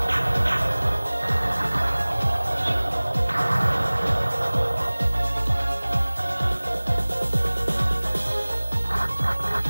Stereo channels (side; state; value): both; inverted; correlation -1.00